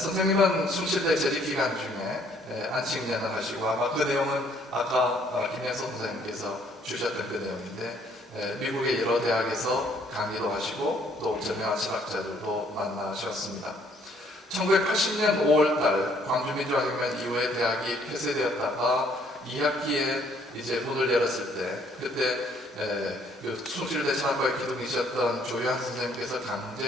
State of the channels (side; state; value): both; normal; correlation 0.64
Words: 숭실대 재직기간 중에 안식년을 하시고 아마 그 내용은 아까 김혜선 선생님께서 주셨던 그 내용인데 미국의 여러 대학에서 강의도 하시고 또 저명한 철학자들도 만나셨습니다. 1980년 5월달 광주민주화혁명 이후에 대학이 폐쇄되었다가 2학기에 이제 문을 열었을 때 그때 그 숭실대 철학과에 기둥이셨던 조효한 선생님께서